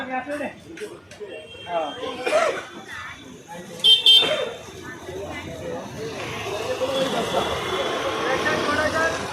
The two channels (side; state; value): both; identical; correlation 1.00